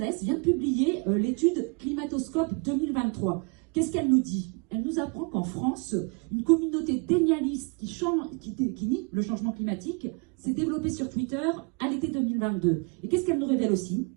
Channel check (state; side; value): quieter; left; 33.9 dB